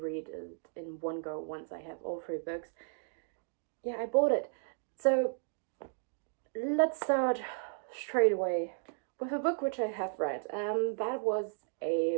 read it in one go once I have all 3 books. Yeah, I bought it. So let's start straight away with a book which I have read. That was a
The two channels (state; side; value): silent; left; digital silence